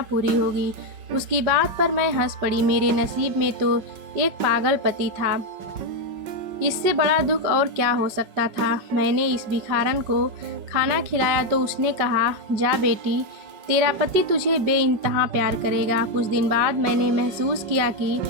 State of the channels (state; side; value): late; left; 5.4 ms